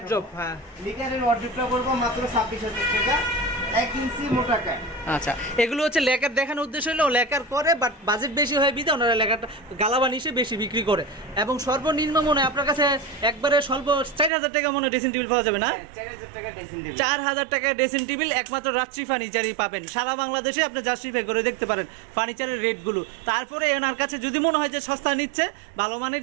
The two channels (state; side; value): drops out; left; at 14.3 s